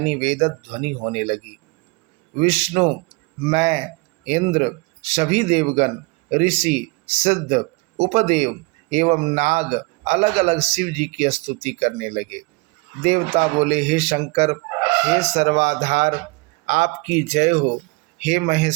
वेद ध्वनि होने लगी। विष्णु, मैं, इंद्र, सभी देवगण, ऋषि, सिद्ध, उपदेव एवं नाग अलग अलग शिव जी की स्तुति करने लगे। देवता बोले, हे शंकर, हे सर्वाधार, आपकी जय हो। हे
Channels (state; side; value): quieter; left; 26.8 dB